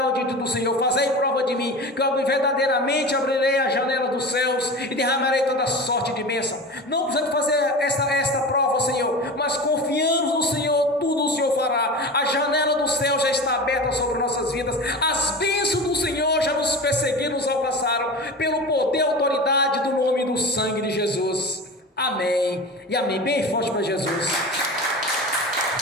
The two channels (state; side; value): normal; both; correlation 0.30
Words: diante do Senhor. Fazei prova de mim, que eu verdadeiramente abrirei a janela dos céus e derramarei toda sorte de bênção. Não precisamos fazer esta prova, Senhor, mas confiamos no Senhor, tudo o Senhor fará. A janela do céu já está aberta sobre nossas vidas. As bênçãos do Senhor já nos perseguiram, nos alcançaram, pelo poder e autoridade do nome e do sangue de Jesus. Amém e amém. Bem forte para Jesus.